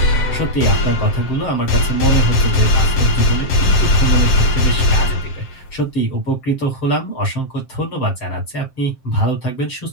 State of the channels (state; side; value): late; right; 7.6 ms